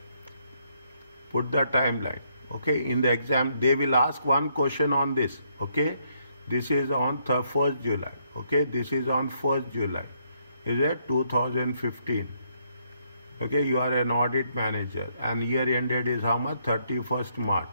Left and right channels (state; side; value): inverted; both; correlation -0.72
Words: Put the timeline. Okay, in the exam, they will ask one question on this. Okay, this is on 1st July. Okay, this is on 1st July. Is it 2015? Okay, you are an audit manager and year ended is how much? 31st March